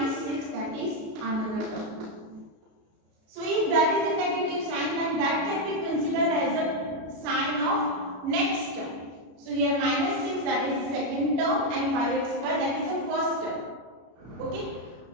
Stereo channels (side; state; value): left; late; 33 ms